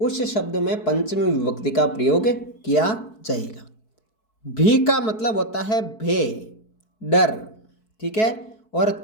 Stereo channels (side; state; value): right; late; 4.6 ms